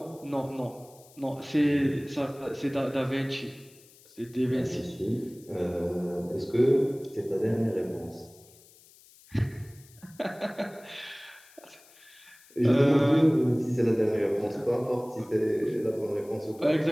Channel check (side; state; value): left; noise; hiss, 25 dB below the sound